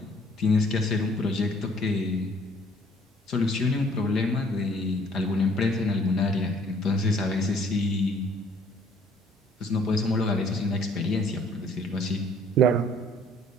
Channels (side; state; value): both; normal; correlation 0.59